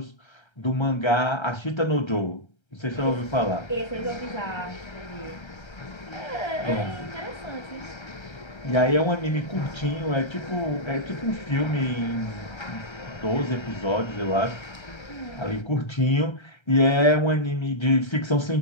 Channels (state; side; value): late; right; 1.3 ms